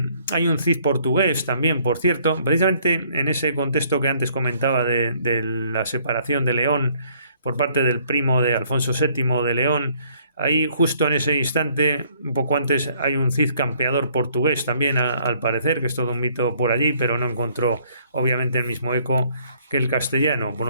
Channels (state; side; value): inverted; both; correlation -0.63